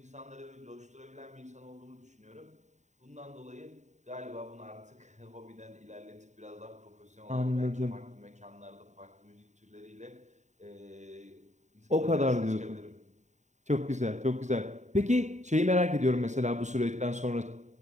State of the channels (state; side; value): late; left; 0.34 ms